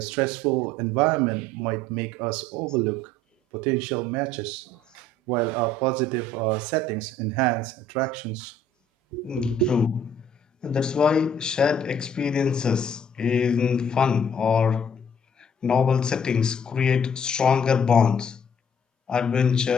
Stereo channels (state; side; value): normal; both; correlation 0.59